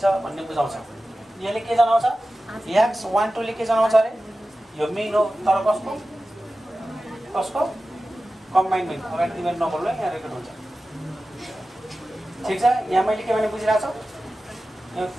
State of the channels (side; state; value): both; normal; correlation 0.95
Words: भन्ने बुझाउँछ। यसले के जनाउँछ x12 ले के जनाउँछ अरे यो मिन हो तर कसको कम्बाइन मिन अगाडि तिमीहरू नबोल्नु यहाँ रेकर्ड हुन्छ ठिक छ यहाँ मैले के भने बुझिरहेको छु यो